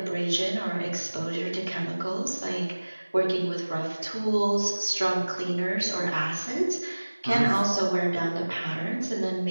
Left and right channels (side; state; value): both; inverted; correlation -1.00